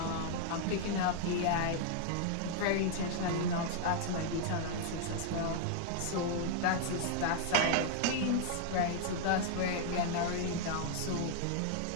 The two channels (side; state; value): both; different; correlation -0.01